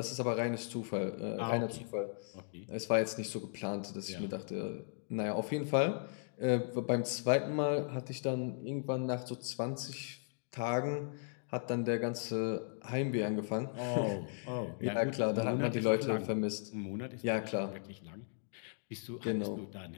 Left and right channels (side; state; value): right; silent; digital silence